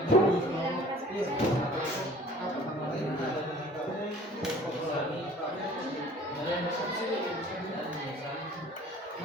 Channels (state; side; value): normal; both; correlation 0.49